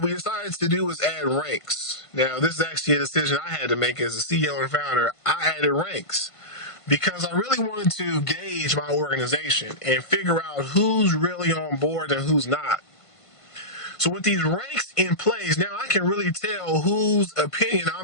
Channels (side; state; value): right; late; 1.5 ms